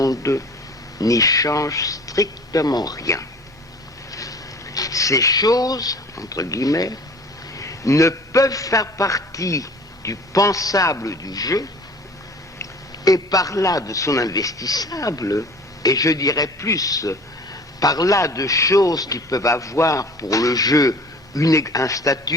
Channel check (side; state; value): both; normal; correlation 0.45